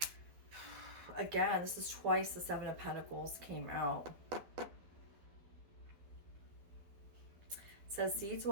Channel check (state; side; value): late; left; 12 ms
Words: Again, this is twice the Seven of Pentacles came out. It says seeds